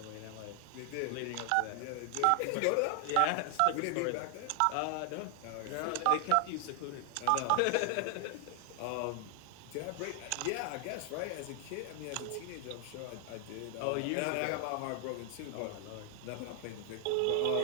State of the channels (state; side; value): different; both; correlation 0.00